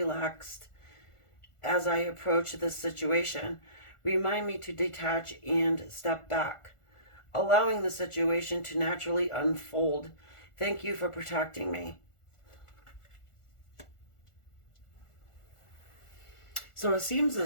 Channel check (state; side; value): late; right; 1.4 ms